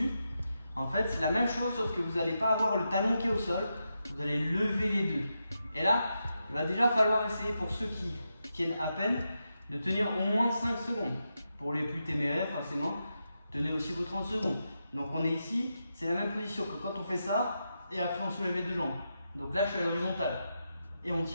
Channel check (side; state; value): both; inverted; correlation -0.87